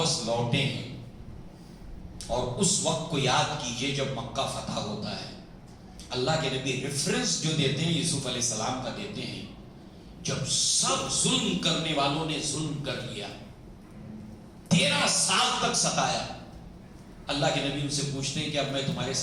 لوٹے ہیں، اور اس وقت کو یاد کیجئے جب مکہ فتح ہوتا ہے، اللہ کے نبی ریفرنس جو دیتے ہیں یوسف علیہ السلام کا دیتے ہیں، جب سب ظلم کرنے والوں نے ظلم کر لیا، 13 سال تک ستایا، اللہ کے نبی ان سے پوچھتے ہیں کہ اب میں تمہارے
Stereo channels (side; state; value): both; identical; correlation 1.00